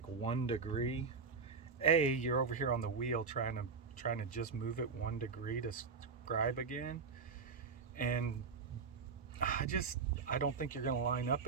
1 degree, you're over here on the wheel trying to just move it 1 degree to scribe again, and I don't think you're going to line up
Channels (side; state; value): left; quieter; 5.2 dB